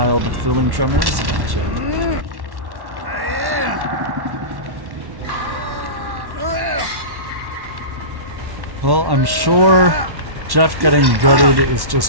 with feeling tremors. Gotcha. Well, I'm sure Jeff getting gutted is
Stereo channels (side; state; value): left; late; 1.1 ms